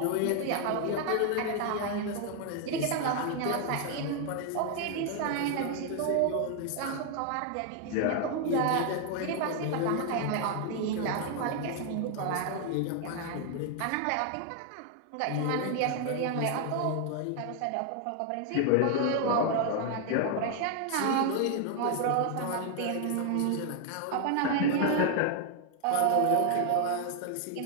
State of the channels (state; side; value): different; both; correlation 0.00